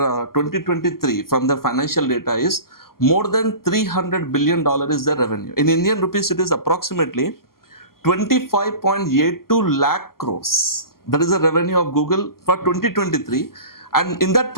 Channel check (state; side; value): late; right; 0.92 ms